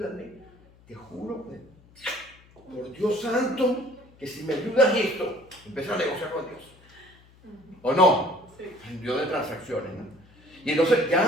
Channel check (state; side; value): noise; left; hum, 27 dB below the sound